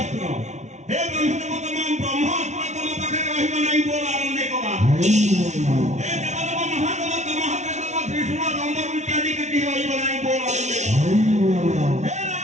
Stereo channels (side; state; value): left; late; 0.33 ms